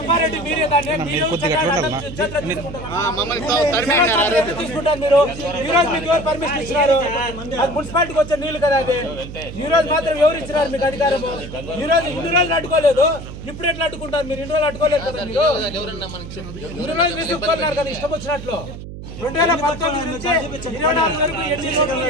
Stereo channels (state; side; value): noise; right; hum, 11 dB below the sound